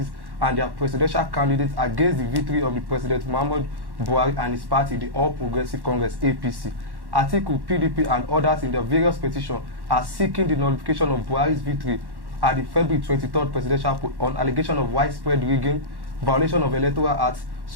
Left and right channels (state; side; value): late; left; 1.1 ms